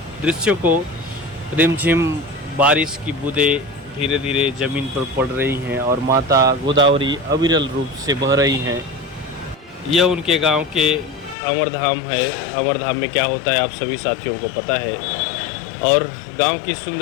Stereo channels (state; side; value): drops out; right; at 11.4 s